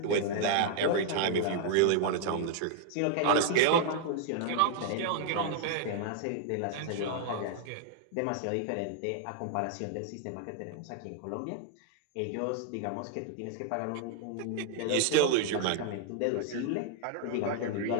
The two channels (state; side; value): different; both; correlation 0.00